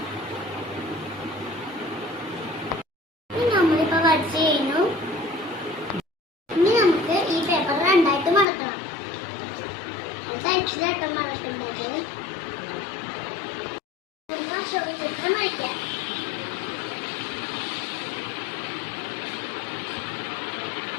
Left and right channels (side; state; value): right; drops out; at 8.5 s